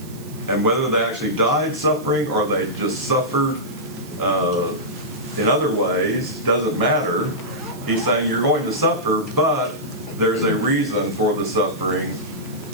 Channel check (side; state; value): right; noise; hiss, 20 dB below the sound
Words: And whether they actually died suffering or they just suffered in other ways, doesn't matter. He's saying you're going to suffer, but there's a reason for the suffering.